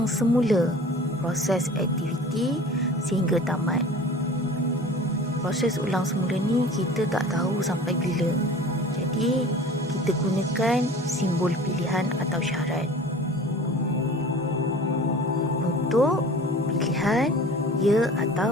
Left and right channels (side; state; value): both; normal; correlation 0.41